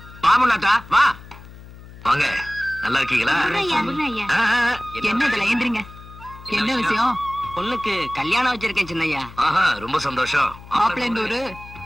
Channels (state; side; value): noise; left; hum, 18 dB below the sound